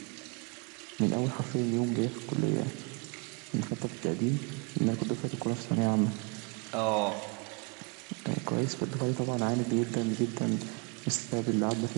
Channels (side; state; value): left; quieter; 32.0 dB